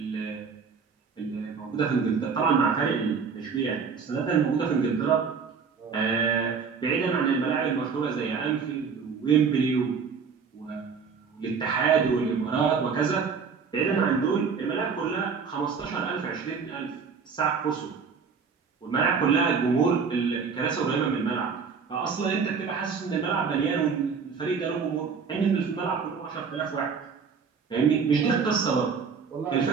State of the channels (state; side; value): quieter; left; 5.7 dB